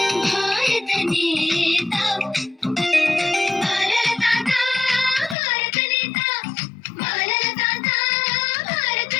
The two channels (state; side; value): drops out; right; at 5.4 s